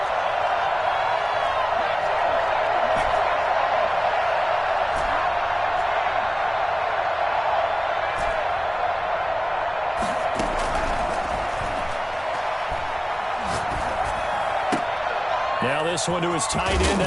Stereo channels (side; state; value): both; identical; correlation 1.00